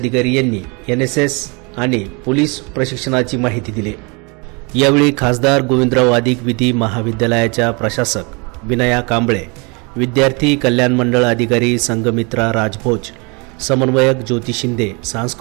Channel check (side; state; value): left; quieter; 30.4 dB